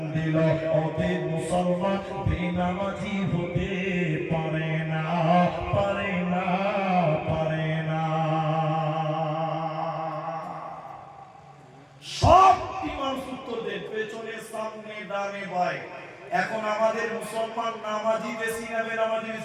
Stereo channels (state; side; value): identical; both; correlation 1.00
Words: দিল। অতএব মুসলমান বেনামাজি হতে পারে না, পারে না, পারে না। সব ইমাম সূত্র দেন, পেছনে, সামনে, ডানে, বাঁয়ে। এখন আমাদের মুসলমান নামাজি বেশি না বেনামাজি